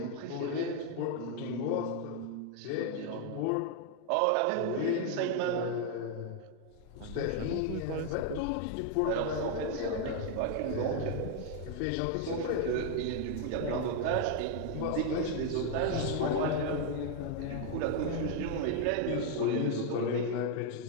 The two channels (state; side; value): different; both; correlation 0.00